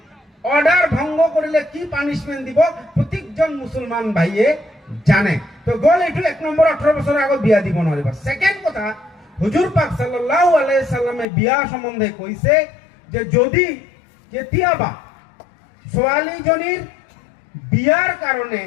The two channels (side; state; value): right; drops out; at 11.2 s